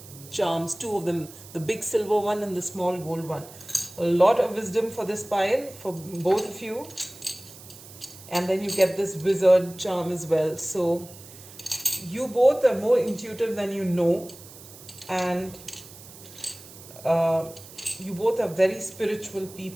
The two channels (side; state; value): right; noise; hiss, 18 dB below the sound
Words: charms, two of them, the big silver one and the small gold one. A lot of wisdom for this pile, for both of you. And then you get this wizard charm as well. So you both are more intuitive than you know, and you both are very spiritual